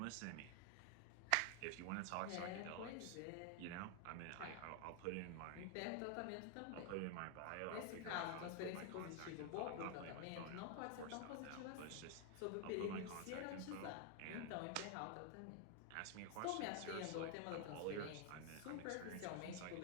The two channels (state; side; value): different; both; correlation 0.00